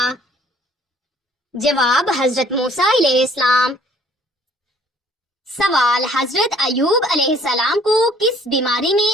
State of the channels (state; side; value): normal; both; correlation 0.59